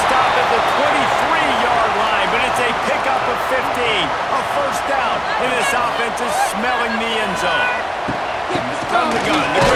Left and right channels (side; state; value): both; identical; correlation 1.00